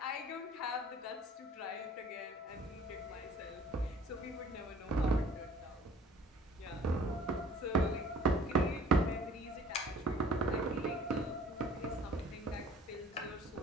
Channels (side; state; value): both; normal; correlation 0.51